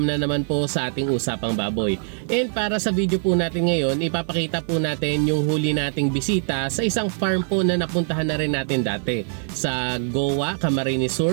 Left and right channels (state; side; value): silent; left; 64 dB below the other